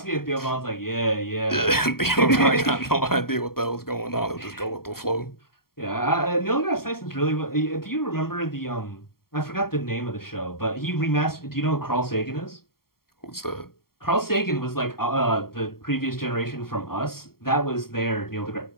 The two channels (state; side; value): late; right; 0.93 ms